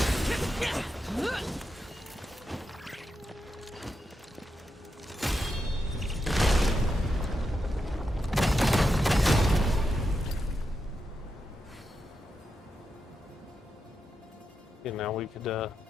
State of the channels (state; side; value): normal; both; correlation 0.86